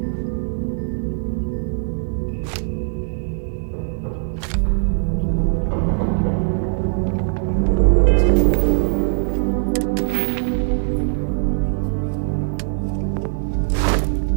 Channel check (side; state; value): left; silent; 65 dB below the other